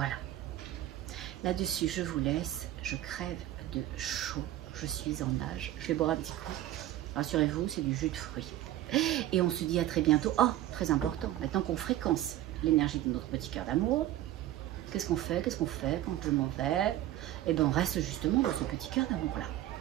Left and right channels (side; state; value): left; quieter; 13.7 dB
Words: Là-dessus, je vous laisse. Je crève de chaud. Je suis en nage. Je vais boire un petit coup. Rassurez-vous, c'est du jus de fruits. Et on se dit à très bientôt. Oh, très important. Maintenant qu'on fréquence l'énergie de notre petit cœur d'amour, qu'est-ce qu'on fait? Qu'est-ce qu'on fait quand je m'en vais? Eh bien, on reste justement dans ce petit cœur d'amour-là.